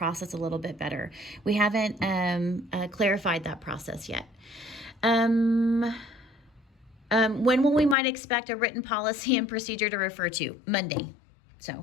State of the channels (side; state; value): right; drops out; at 8.0 s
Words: a little bit better. We haven't clarified that process yet. When will we might expect a written policy and procedure to refer to? Monday.